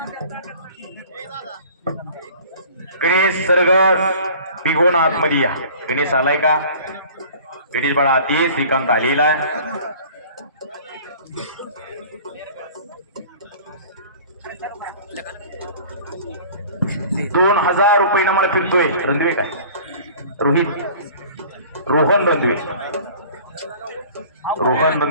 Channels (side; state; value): both; inverted; correlation -0.46